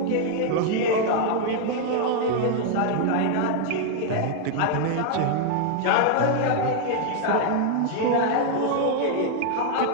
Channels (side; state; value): both; different; correlation 0.00